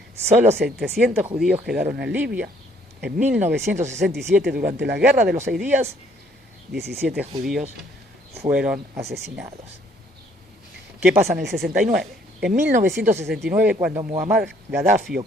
Solo 700 judíos quedaron en Libia. En 1967, durante la Guerra de los 6 días, 17 judíos fueron asesinados. ¿Qué pasa en el 69? En 1969, cuando Muammar Gaddafi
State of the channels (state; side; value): normal; both; correlation 0.63